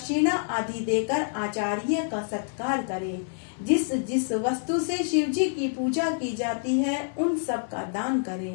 आदि देकर आचार्य का सत्कार करें। जिस जिस वस्तु से शिव जी की पूजा की जाती है उन सब का दान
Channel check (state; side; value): silent; right; 60 dB below the other